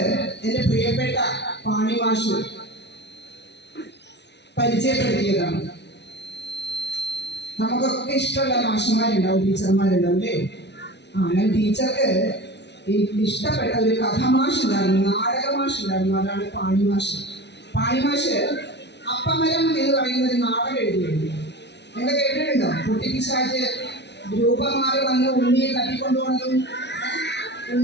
എൻ്റെ പ്രിയപ്പെട്ട പാണി മാഷ് പരിചയപ്പെടുത്തിയതാണ്. നമുക്കൊക്കെ ഇഷ്ടമുള്ള മാഷന്മാരുണ്ടാവും, ടീച്ചർമാരുണ്ടാവും അല്ലേ? ഞാൻ ടീച്ചർക്ക് ഇഷ്ടപ്പെട്ട ഒരു കഥമാഷ് ഉണ്ടായിരുന്നു, നാടകമാഷ് ഉണ്ടായിരുന്നു. അതാണ് പാണി മാഷ്. പാണി മാഷ് അപ്പമരം എന്ന് പറയുന്ന ഒരു നാടകം എഴുതിയിരുന്നു. നിങ്ങൾ കേട്ടിട്ടുണ്ടോ? കുട്ടിപ്പിശാച് രൂപം മാറി വന്ന് ഉണ്ണിയെ തട്ടിക്കൊണ്ടുപോകുന്നതും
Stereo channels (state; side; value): late; right; 0.50 ms